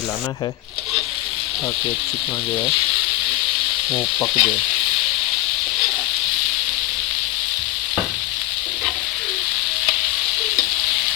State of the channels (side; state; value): right; quieter; 17.7 dB